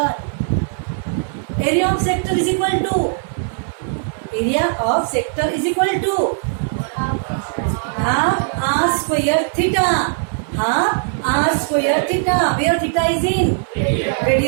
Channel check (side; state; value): left; silent; 56 dB below the other